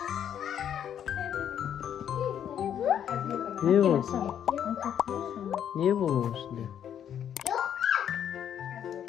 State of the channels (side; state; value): right; quieter; 9.4 dB